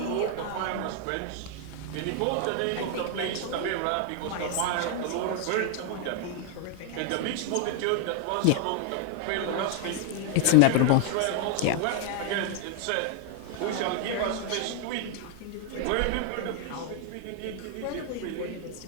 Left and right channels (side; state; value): both; different; correlation 0.00